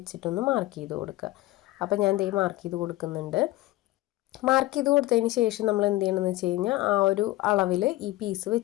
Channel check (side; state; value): right; quieter; 17.6 dB